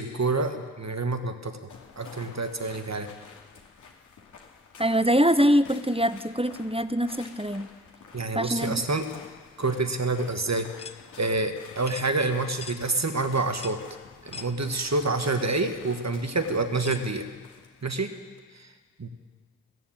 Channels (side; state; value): both; normal; correlation 0.28